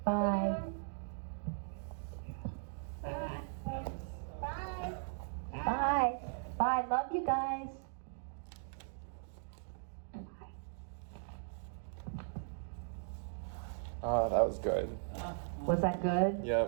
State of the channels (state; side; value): silent; left; digital silence